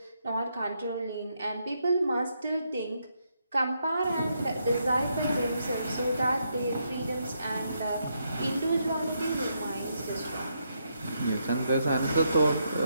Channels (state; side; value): inverted; both; correlation -0.79